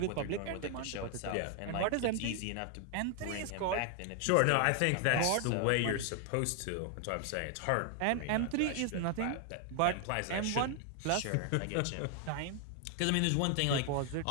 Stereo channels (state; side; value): different; both; correlation 0.00